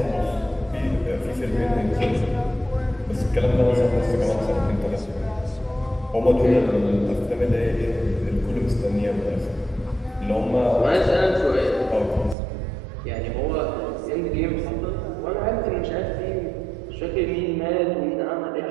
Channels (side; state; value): left; drops out; at 12.4 s